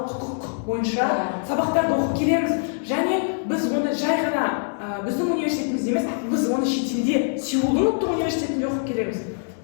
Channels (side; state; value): right; silent; digital silence